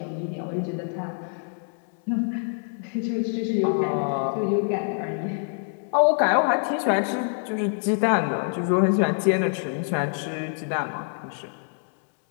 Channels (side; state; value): right; silent; digital silence